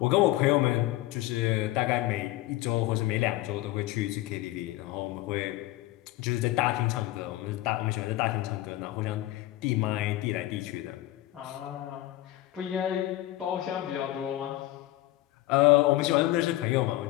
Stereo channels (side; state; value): right; quieter; 16.4 dB